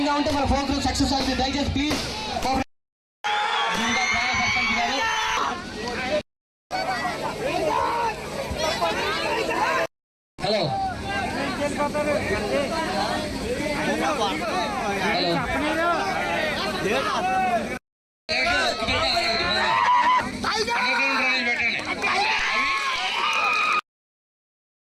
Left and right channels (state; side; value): identical; both; correlation 1.00